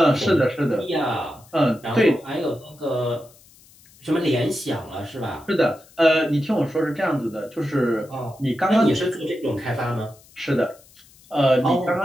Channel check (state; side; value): noise; left; hiss, 26 dB below the sound